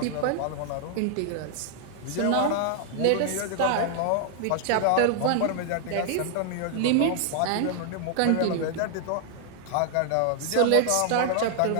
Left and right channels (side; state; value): both; different; correlation 0.00